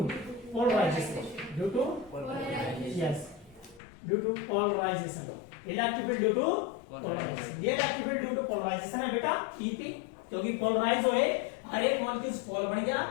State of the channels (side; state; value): right; drops out; at 3.8 s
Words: polarisation, due to yes, due to polarisation, electric field due to polarisation. ये electric field due to polarisation है बेटा ईपी, क्योंकि पोलराइज हुए, हर एक मॉलिक्यूल पोलर बन गया,